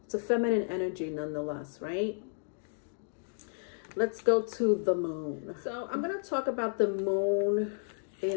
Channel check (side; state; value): right; silent; digital silence